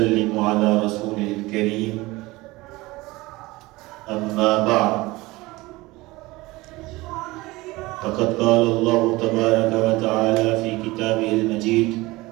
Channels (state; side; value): quieter; left; 20.8 dB